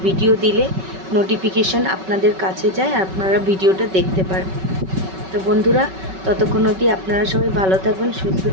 ভিডিও দিলে নোটিফিকেশান আপনাদের কাছে যায় আর আপনারা ভিডিওটা দেখতে পারেন। তো বন্ধুরা, ততক্ষণ অবধি আপনারা সবাই ভালো থাকবেন, সুস্থ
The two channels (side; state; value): left; late; 5.3 ms